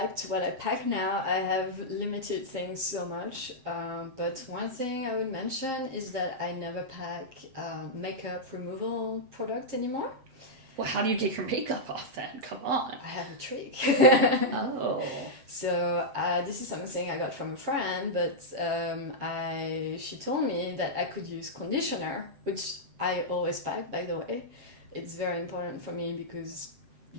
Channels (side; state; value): left; late; 7.6 ms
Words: to what I pack now, I have limited things so much. But one thing I would mention is that I never pack makeup removal product anymore. Well, how do you get your makeup off then? Come on. I have a trick. Oh. So this is something I got from a friend, but she told me that I could use conditioner, which I always pack, by the way. It's very important for me because,